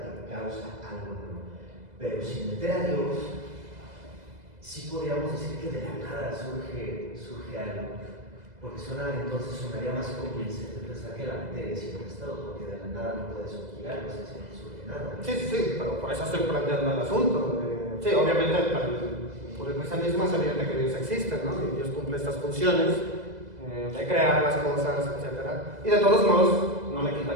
que causa algo nuevo. Pero sin meter a Dios, sí podríamos decir que de la nada surge algo. Porque entonces sonaría más convincente pensar que la materia siempre ha estado, porque de la nada no puede surgir algo, o sea, si no surge nada. Sí, pero por eso estoy planteando el asunto. Sí, obviamente por el cristianismo es evidente que Dios existe, ¿no? Y Dios cumple estas funciones de crear las cosas, etc. Y de todos modos, no le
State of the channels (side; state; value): left; late; 2.0 ms